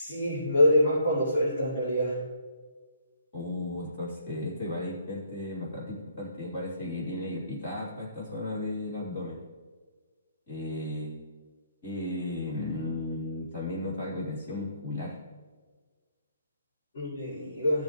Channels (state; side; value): inverted; both; correlation -0.68